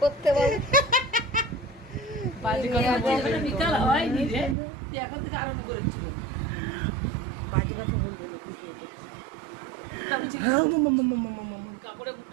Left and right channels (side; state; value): left; drops out; at 4.5 s